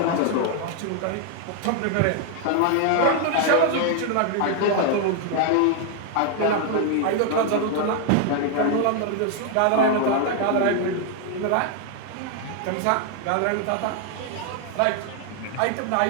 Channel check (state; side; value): different; both; correlation 0.00